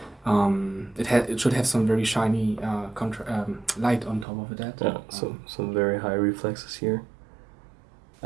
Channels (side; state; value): left; drops out; at 4.2 s